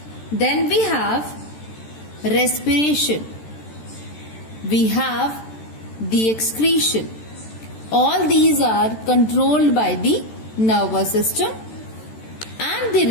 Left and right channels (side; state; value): right; late; 13 ms